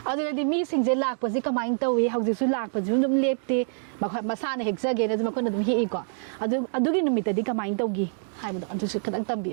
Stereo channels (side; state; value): left; silent; 61 dB below the other